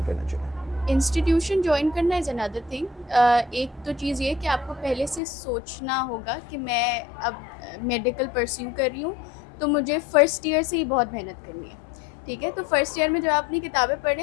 करना चाहिए? इंस्टीट्यूशन ज्वाइन करना इज़ अनदर थिंग। एक तो चीज़ ये कि आपको पहले से सोचना होगा कि मैं अब मेडिकल परस्यू कर रही हूँ, तो मुझे फ़र्स्ट ईयर से ही बहुत मेहनत करनी है, ठीक है। तो फर्स्ट ईयर में जब आप अपनी किताबें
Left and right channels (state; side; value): drops out; right; at 5.2 s